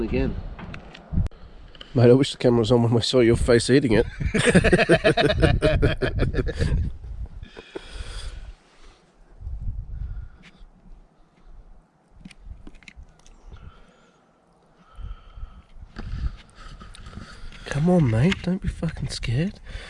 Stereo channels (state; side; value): identical; both; correlation 1.00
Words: again. Mate, I wish the camera was on when we saw your face eating it. Come on, mate, don't be fucking scared.